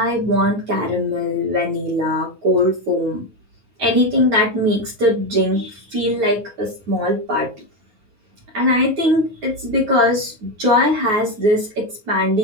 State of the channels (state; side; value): late; left; 9.4 ms